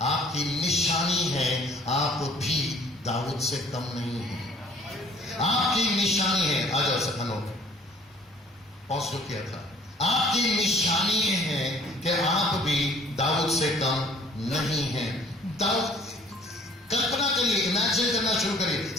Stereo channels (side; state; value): both; normal; correlation 0.55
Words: आपकी निशानी है आप भी दाऊद से कम नहीं है। आपकी निशानी है, आ जाओ सखनों पॉज जो किया था, आपकी निशानी है कि आप भी दाऊद से कम नहीं है। दाऊद, कल्पना करिए, इमेजिन करना शुरू करिए,